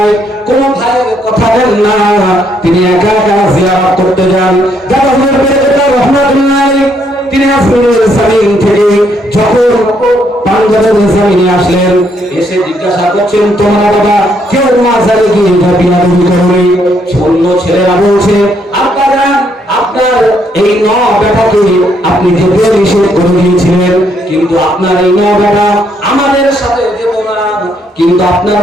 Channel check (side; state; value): both; normal; correlation 0.72